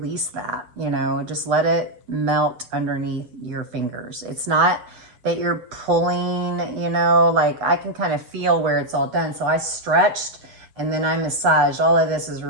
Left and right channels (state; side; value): late; left; 8.3 ms